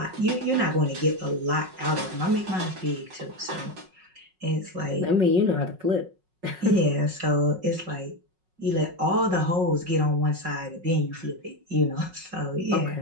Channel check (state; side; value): late; left; 5.4 ms